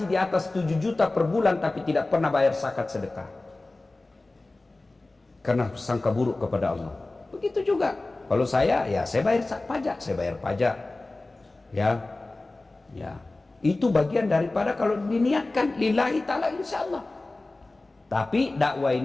di atas 7 juta per bulan tapi tidak pernah bayar zakat sedekah. Karena sangka buruk kepada Allah. Begitu juga. Kalau saya, ya saya bayar pajak, saya bayar pajak. Ya. Itu bagian daripada kalau diniatkan lillahi ta'ala insyaallah. Tapi dakwah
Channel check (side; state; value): right; quieter; 3.0 dB